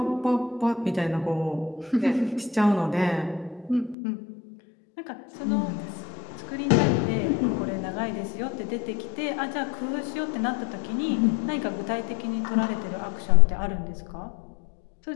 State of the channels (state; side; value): drops out; right; at 4.0 s